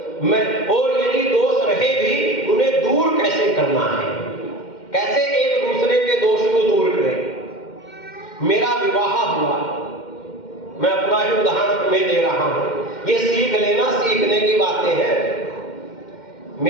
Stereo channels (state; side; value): late; right; 2.1 ms